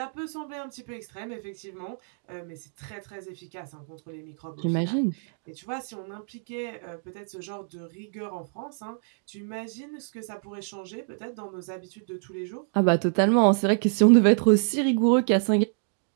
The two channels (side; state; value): left; silent; digital silence